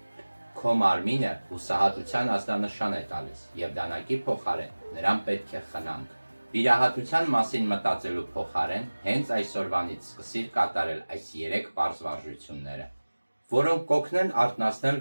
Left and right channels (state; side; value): inverted; both; correlation -1.00